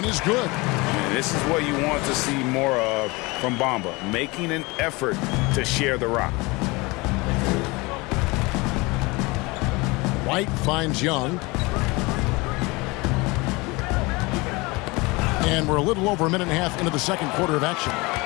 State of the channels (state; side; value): quieter; right; 24.5 dB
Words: is good. And this is what you want to see more of from Bamba, making an effort to share the rock. White finds Young. And we're a little over a minute and a half into the second quarter of action.